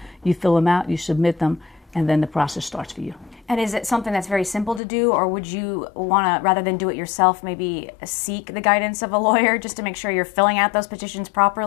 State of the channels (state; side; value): drops out; right; at 4.8 s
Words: You fill them out, you submit them, and then the process starts for you. And is it something that's very simple to do, or would you want to, rather than do it yourself, maybe seek the guidance of a lawyer just to make sure you're filling out those petitions